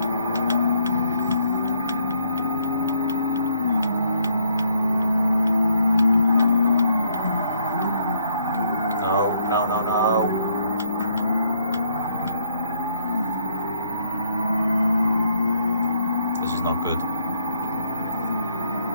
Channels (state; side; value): inverted; both; correlation -0.69